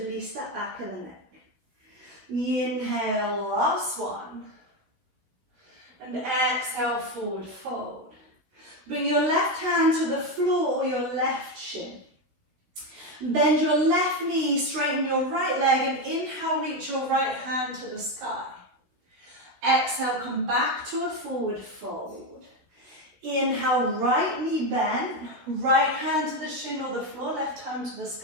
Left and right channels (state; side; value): late; left; 16 ms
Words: that back of the neck. Inhale, last one. And exhale, forward fold. Bring your left hand to the floor or your left shin. Bend your left knee, straighten your right leg, and inhale, reach your right hand to the sky. Exhale, come back to a forward fold. Inhale, right knee bent, right hand to the shin or the floor, left hand to the